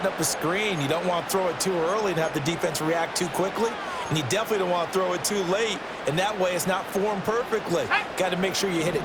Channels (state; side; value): identical; both; correlation 1.00